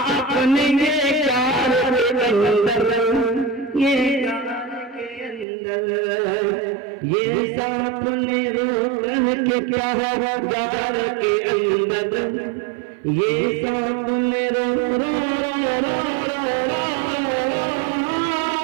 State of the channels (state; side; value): drops out; left; at 5.5 s